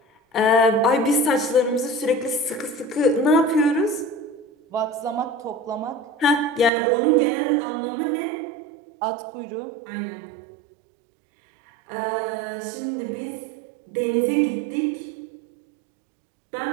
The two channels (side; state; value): left; drops out; at 6.7 s